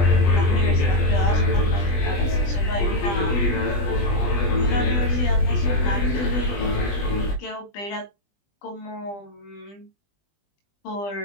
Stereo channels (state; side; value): late; right; 20 ms